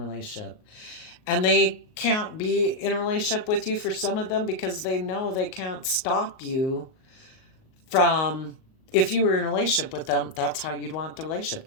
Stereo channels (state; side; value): late; right; 38 ms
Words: And they can't be in a relationship with you, for some of them, because they know they can't stop you from, if you were in a relationship with them, that's how you'd want the relationship